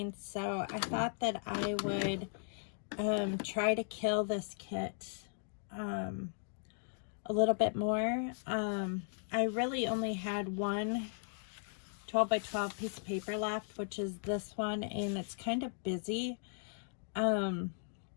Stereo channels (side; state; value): right; silent; digital silence